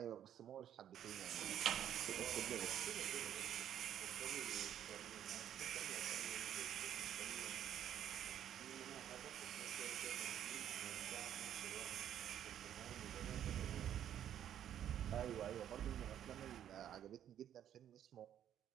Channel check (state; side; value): quieter; left; 10.4 dB